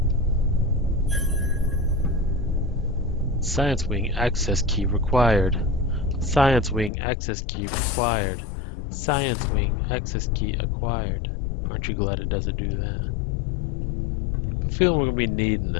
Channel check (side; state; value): right; drops out; at 6.9 s